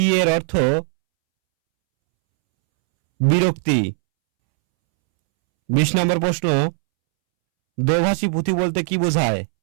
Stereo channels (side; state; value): left; silent; 67 dB below the other